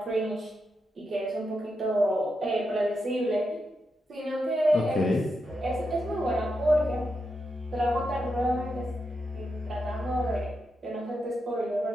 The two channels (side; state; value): both; normal; correlation 0.86